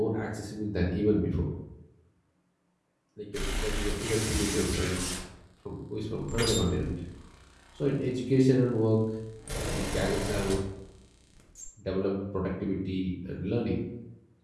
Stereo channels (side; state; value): both; identical; correlation 1.00